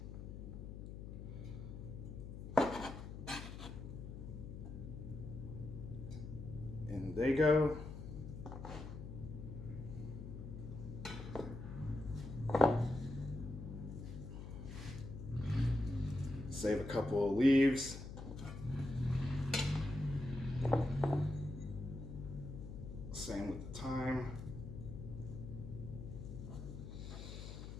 they go. Save a couple of leaves. Same with the thyme.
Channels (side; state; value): left; noise; hum, 9 dB below the sound